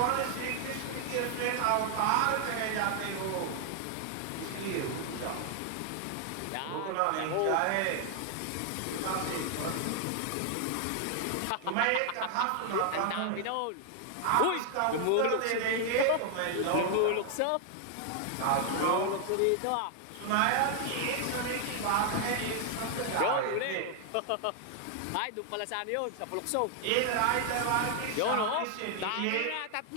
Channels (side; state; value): both; different; correlation 0.00